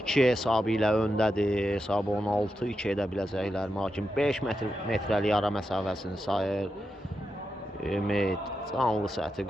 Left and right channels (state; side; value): normal; both; correlation 0.87